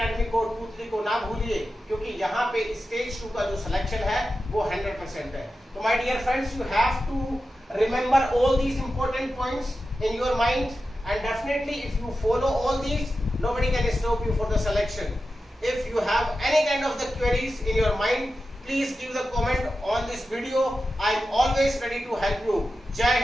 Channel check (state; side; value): normal; both; correlation 0.92